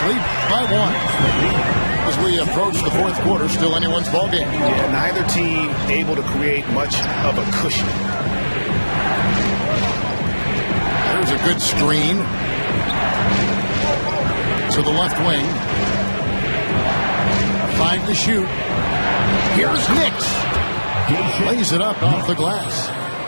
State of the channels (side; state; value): both; inverted; correlation -1.00